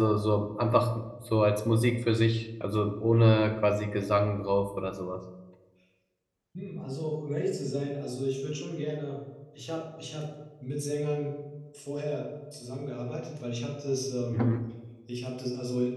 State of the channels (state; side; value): identical; both; correlation 1.00